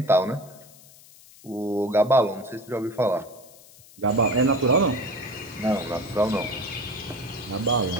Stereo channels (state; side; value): noise; left; hiss, 23 dB below the sound